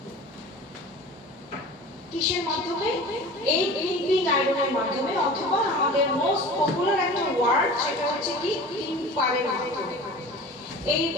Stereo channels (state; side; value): normal; both; correlation 0.38